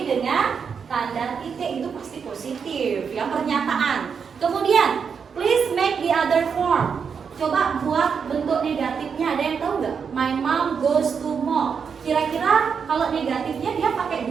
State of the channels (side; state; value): left; quieter; 6.4 dB